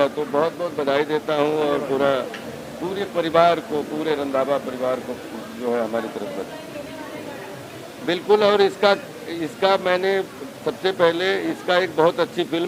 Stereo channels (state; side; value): identical; both; correlation 1.00